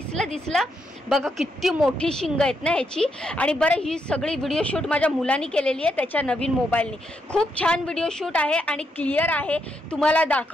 बघा, किती मोठी शिंग आहेत ना ह्याची. आणि बरं, ही सगळी व्हिडिओ शूट माझ्या मुलांनी केलेली आहे त्याच्या नवीन मोबाईलनी. खूप छान व्हिडिओ शूट आहे आणि क्लिअर आहे तुम्हाला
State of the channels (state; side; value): normal; both; correlation 0.79